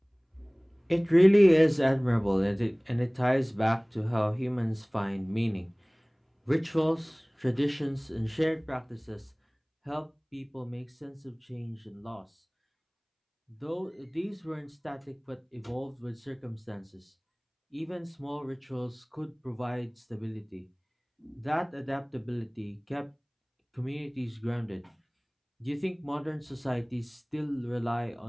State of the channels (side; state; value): both; identical; correlation 1.00